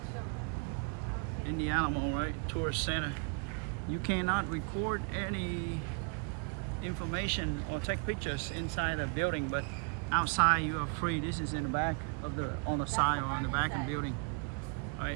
in the Alamo, right? Tourist center. You cannot record any information or take pictures inside the building, but outside you are free. This is in the back of on the side or on the back of the building,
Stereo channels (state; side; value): quieter; left; 36.9 dB